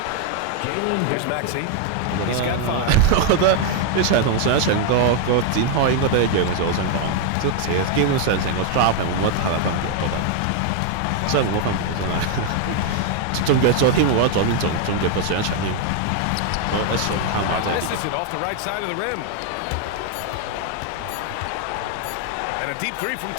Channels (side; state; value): both; different; correlation 0.00